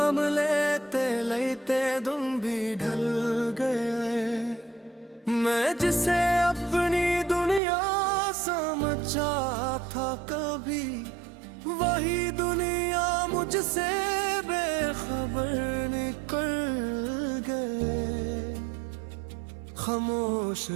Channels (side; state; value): left; drops out; at 7.6 s